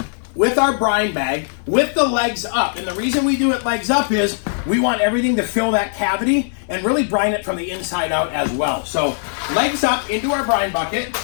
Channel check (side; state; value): right; silent; digital silence